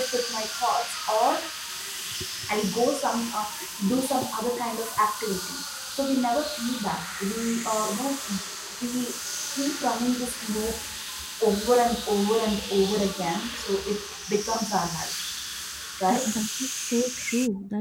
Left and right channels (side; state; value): both; identical; correlation 1.00